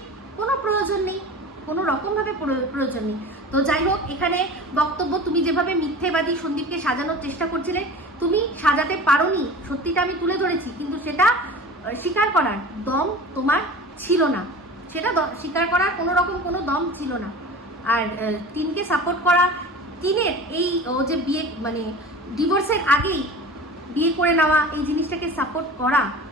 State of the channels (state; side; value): normal; both; correlation 0.36